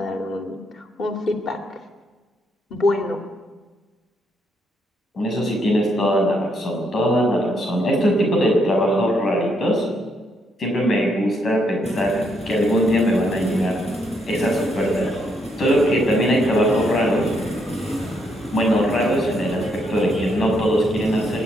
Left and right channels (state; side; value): normal; both; correlation 0.75